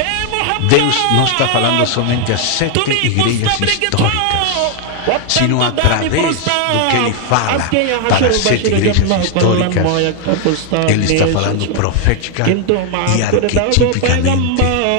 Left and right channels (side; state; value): both; different; correlation 0.00